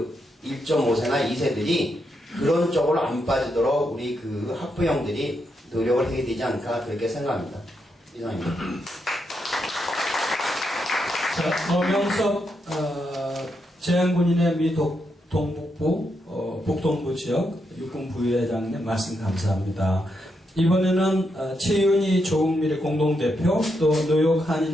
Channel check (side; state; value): both; normal; correlation 0.82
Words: 1.5세나 2세들이 그런 쪽으로 안 빠지도록 우리 학부형들이 노력을 해야 되지 않을까 그렇게 생각합니다. 이상입니다. 자, 어명섭 재향군인의 미 동북부 북동부 지역 육군 부회장님 말씀 감사합니다. 이번에는 최윤희 조국미래 공동대표 또 뉴욕